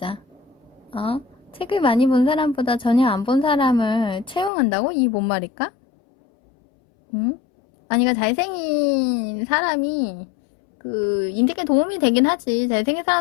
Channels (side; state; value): right; drops out; at 4.5 s